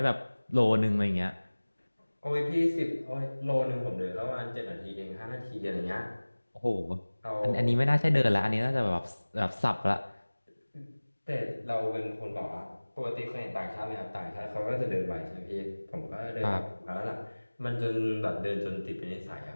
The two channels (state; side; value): inverted; both; correlation -1.00